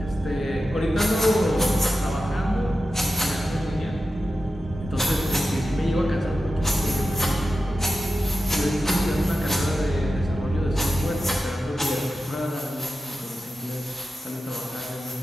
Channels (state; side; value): normal; both; correlation 0.92